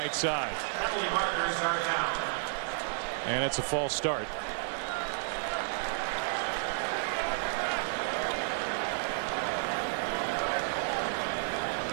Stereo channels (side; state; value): left; silent; digital silence